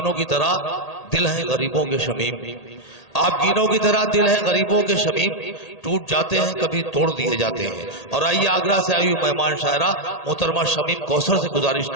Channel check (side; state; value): right; late; 1.8 ms